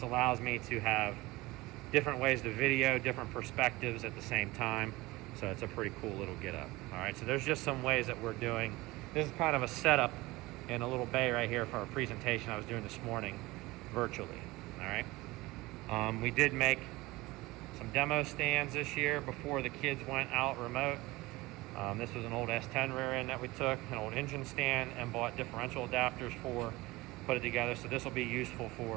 allows me to have different ways to video, different perspectives at the same time. So it's a pretty cool little get up. All right, so there's just some ways that we're doing. This is kind of a setup in a little bay right here for our presentation I was doing this morning virtually. All right. We did make some demo stands this year before the kids went out remote. This was an old S10 rear end that we took, an old engine stand, and bought differential adapters for, put it together. So this will be useful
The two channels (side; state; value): left; quieter; 20.6 dB